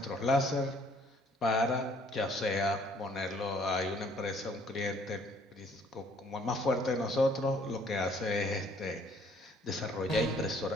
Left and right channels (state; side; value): normal; both; correlation 0.61